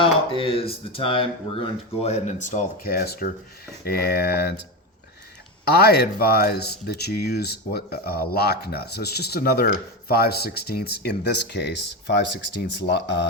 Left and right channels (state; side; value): normal; both; correlation 0.17